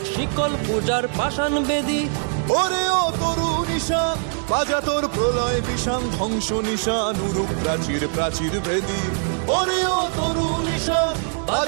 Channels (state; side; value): silent; left; 63 dB below the other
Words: শিকল পূজার পাষাণ বেদী। ওরে ও তরু নিশান বাজা তোর প্রলয় বিষান, ধ্বংস নিশান উরুক প্রাচীর প্রাচীর ভেদী। ওরে ও তরু নিশান